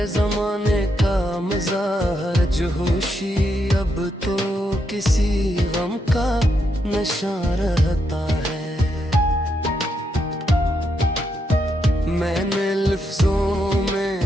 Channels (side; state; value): both; normal; correlation 0.80